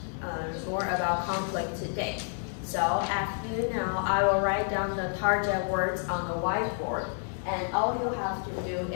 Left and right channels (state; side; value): silent; right; 58 dB below the other